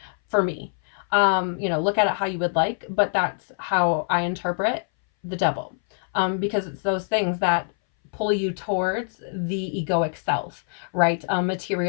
for me. Look at it how you would like, but that's how I interpret the devil. Because it's those things that pull you towards the egoic self, right?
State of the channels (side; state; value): right; silent; 60 dB below the other